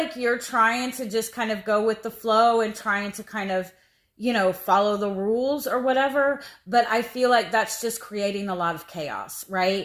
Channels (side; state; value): both; identical; correlation 1.00